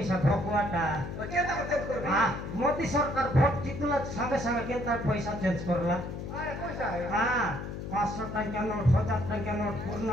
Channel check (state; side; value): noise; left; hum, 7 dB below the sound